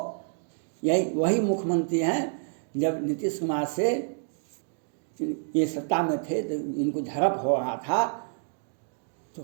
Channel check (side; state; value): left; silent; digital silence